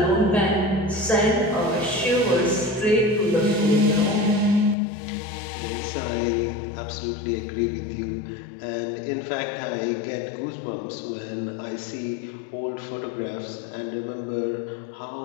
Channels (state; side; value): drops out; right; at 4.8 s